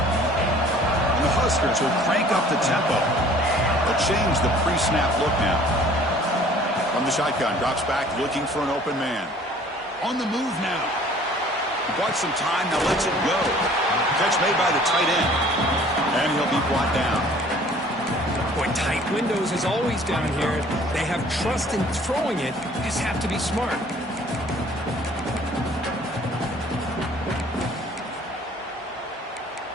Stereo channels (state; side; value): normal; both; correlation 0.53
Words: the Huskers will crank up the tempo. They'll change the pre-snap look now. From the shotgun, drops back looking for an open man. On the move now. Bought some time, now lets it go. Catch made by the tight end. And he'll be brought down. Boy, tight windows is always down here. They have trust in throwing it. You just have to be smart.